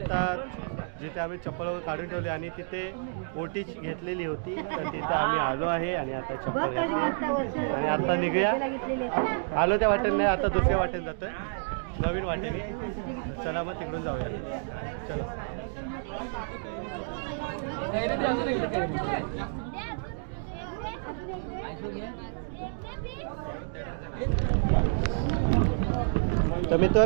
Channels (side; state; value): left; silent; digital silence